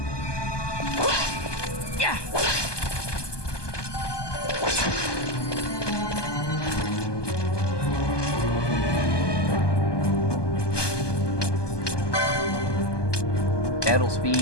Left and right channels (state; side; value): late; right; 1.2 ms